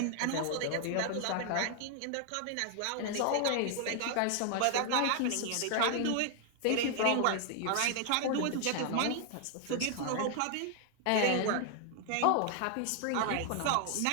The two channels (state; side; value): different; both; correlation 0.00